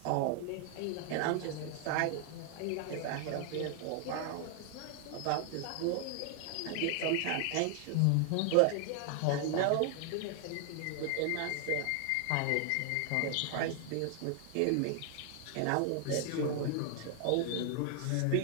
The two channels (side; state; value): both; different; correlation 0.00